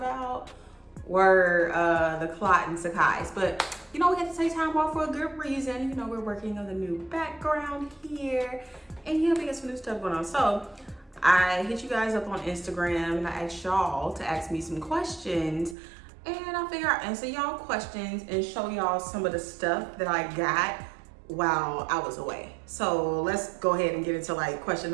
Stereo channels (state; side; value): drops out; left; at 15.8 s